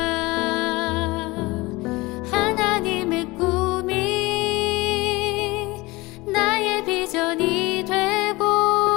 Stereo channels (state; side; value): quieter; right; 22.2 dB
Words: 하나님의 꿈이 나의 비전이 되고